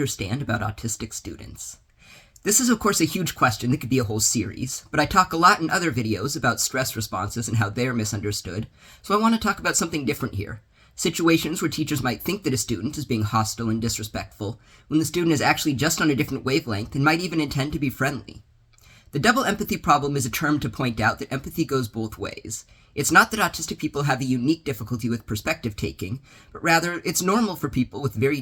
about autistic students? This is, of course, a huge question that could be a whole series, but I talk a lot in other videos about stress responses and how they're misunderstood, so I want to talk about something different here. Situations where teachers might think that a student is being hostile and disrespectful, when the student is actually just on a different wavelength and might even intend to be friendly. The double empathy problem is a term to point out that empathy goes both ways. It's not that autistic people have a unique difficulty with perspective taking, but rather it's normal for people with very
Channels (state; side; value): identical; both; correlation 1.00